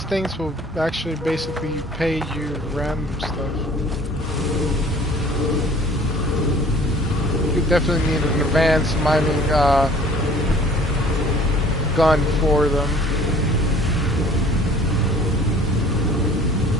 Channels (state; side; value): normal; both; correlation 0.51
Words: things will actually basically pay you random stuff. You definitely need an advanced mining gun for them.